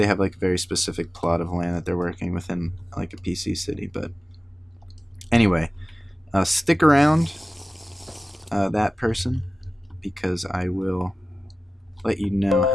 have like a very specific plot of land that they're working within like a PC city. But anyway, stick around, that person, because I will let you know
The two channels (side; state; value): both; normal; correlation 0.96